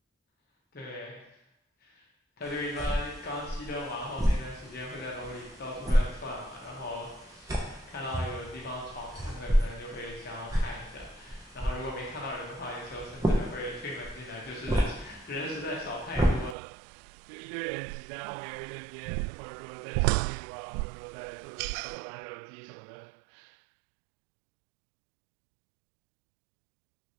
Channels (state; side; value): drops out; left; at 16.6 s